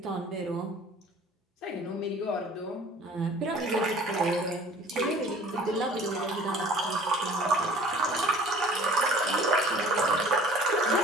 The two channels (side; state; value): both; normal; correlation 0.49